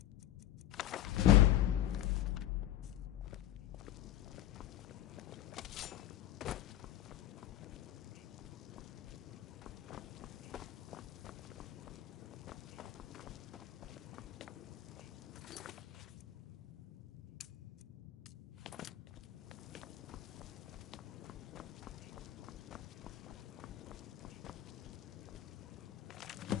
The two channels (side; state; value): right; quieter; 13.0 dB